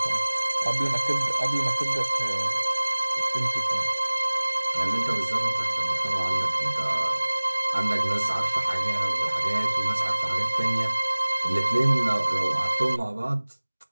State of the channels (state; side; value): inverted; both; correlation -1.00